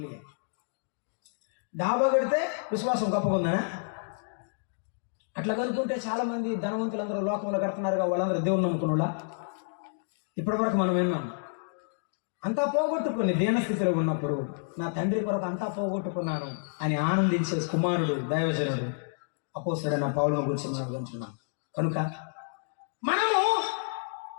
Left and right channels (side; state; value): right; silent; digital silence